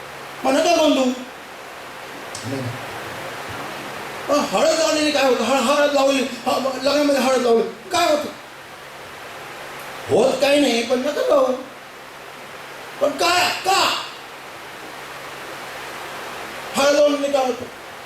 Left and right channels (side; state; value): both; identical; correlation 1.00